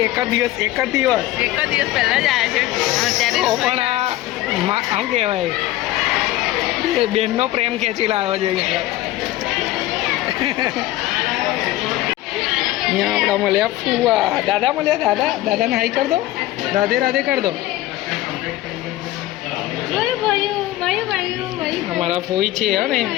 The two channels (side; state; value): right; quieter; 15.9 dB